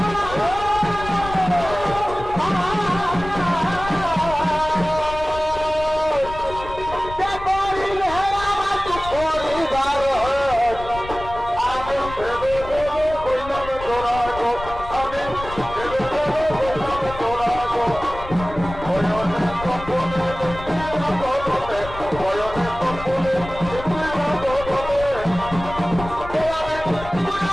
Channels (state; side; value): noise; left; rumble, 12 dB below the sound